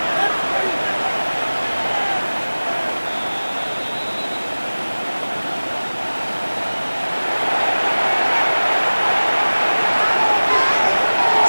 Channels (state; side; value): inverted; both; correlation -1.00